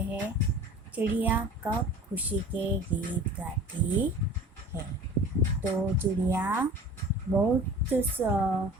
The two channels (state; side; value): normal; both; correlation 0.42